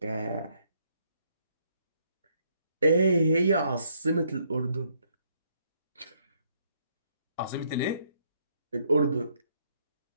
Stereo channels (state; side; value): inverted; both; correlation -0.71